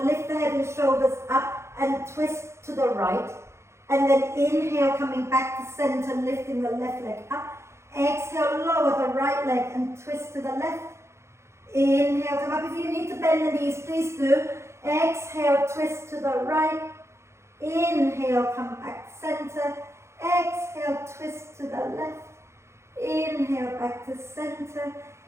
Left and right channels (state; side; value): late; left; 0.13 ms